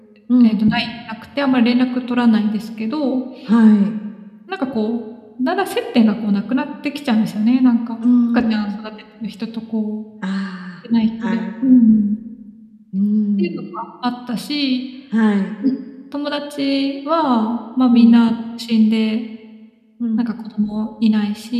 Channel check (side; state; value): both; identical; correlation 1.00